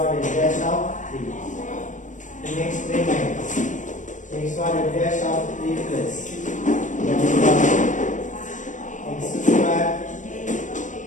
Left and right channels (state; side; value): late; right; 0.37 ms